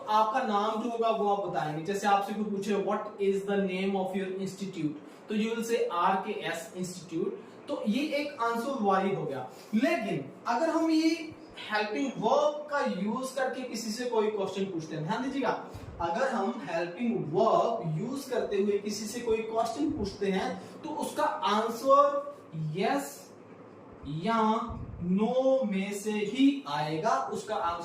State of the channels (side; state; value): both; identical; correlation 1.00